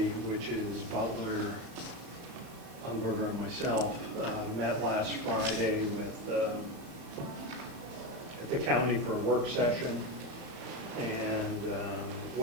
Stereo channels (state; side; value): late; left; 35 ms